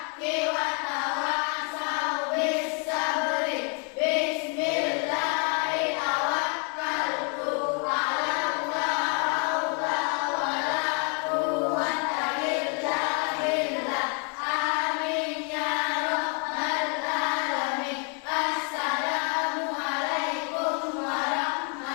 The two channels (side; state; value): right; quieter; 38.7 dB